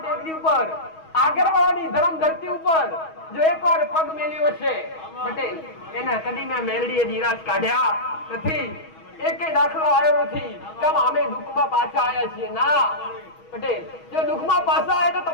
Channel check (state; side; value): late; right; 6.3 ms